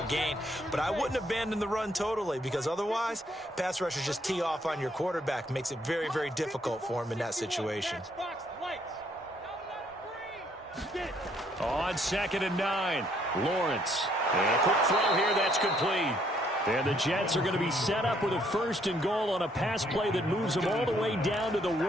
gain. But I wouldn't abandon the run totally, because otherwise, pass rushers just tee off on your quarterback. Makes it very, very difficult for him in that situation. On 2nd and 9, Lawrence. And a quick throw here, that's complete. And the Jets are going to be set up with a 1st and goal on a pass play that moves them all the way down to the 1.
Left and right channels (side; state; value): both; normal; correlation 0.68